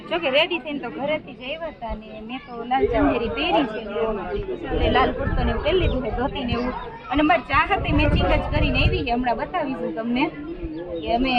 જો કે રેડી થઈને તો ઘરેથી જ આવ્યા હતા ને મેં તો લાલ ચંદેરી પહેરી છે ને લાલ કુર્તો ને એવું પહેરી લીધું છે, ધોતી ને એવું। અને મારી ચાહતે મેચિંગ જ કરીને આવી છે, હમણાં બતાવીશું તમને કે અમે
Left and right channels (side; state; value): both; identical; correlation 1.00